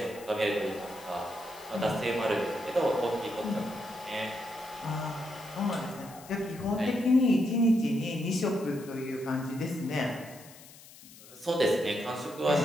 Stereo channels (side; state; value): left; noise; hiss, 20 dB below the sound